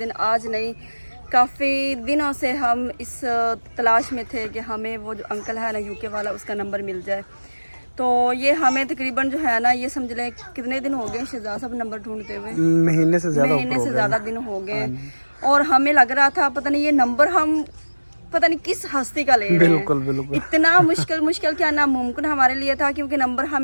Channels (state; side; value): inverted; both; correlation -1.00